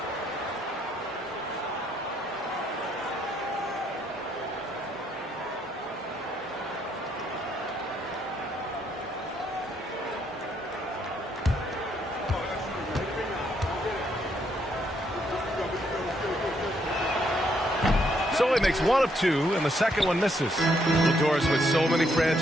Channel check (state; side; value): normal; both; correlation 0.73